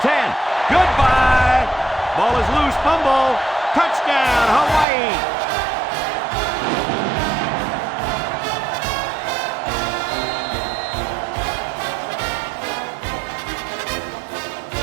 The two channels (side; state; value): left; drops out; at 4.9 s